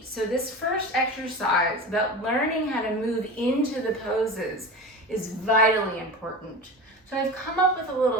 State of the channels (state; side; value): normal; both; correlation 0.30